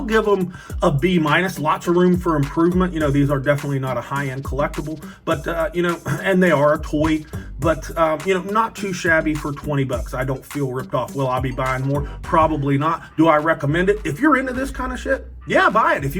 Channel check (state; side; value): identical; both; correlation 1.00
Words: give them a B-. Lots of room for improvement. You know, these are definitely not a high-end collectible, but, you know, and they are a toy, but, you know, not too shabby for $20. I don't feel ripped off. Will I be buying more? Probably not. Do I recommend it? If you're into this kind of shit, yeah, buy it. If